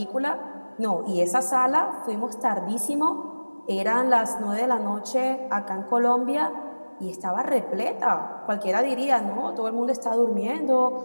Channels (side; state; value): both; inverted; correlation -1.00